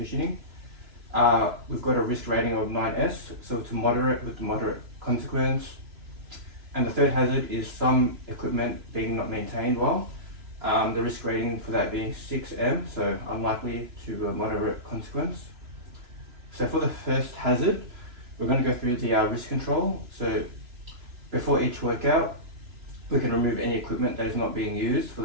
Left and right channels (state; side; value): late; left; 3.0 ms